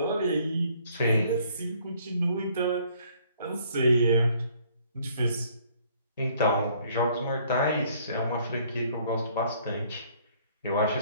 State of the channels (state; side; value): inverted; both; correlation -0.62